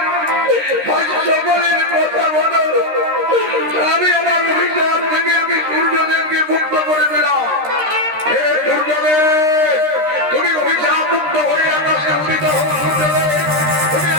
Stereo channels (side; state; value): left; late; 13 ms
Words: সকলের কথা বলো